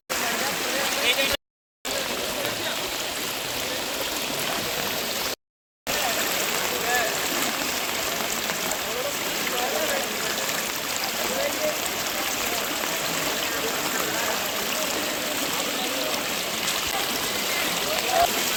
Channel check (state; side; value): identical; both; correlation 1.00